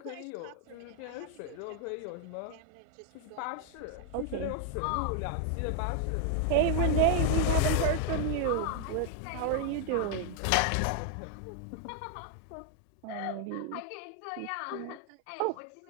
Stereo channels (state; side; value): different; both; correlation 0.00